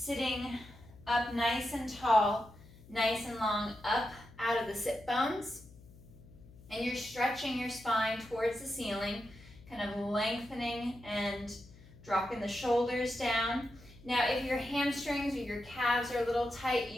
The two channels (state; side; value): noise; left; hum, 22 dB below the sound